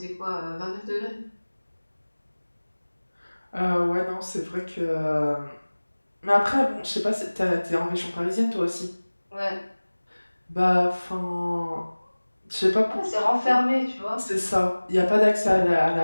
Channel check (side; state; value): both; inverted; correlation -1.00